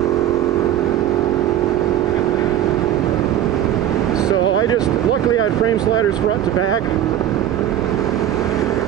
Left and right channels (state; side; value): quieter; left; 11.3 dB